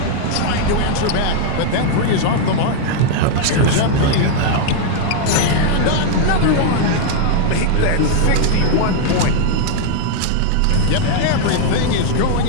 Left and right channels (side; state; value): both; different; correlation 0.00